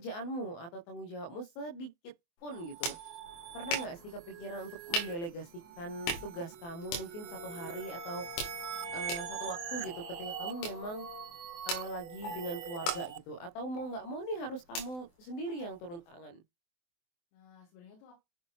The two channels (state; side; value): late; right; 24 ms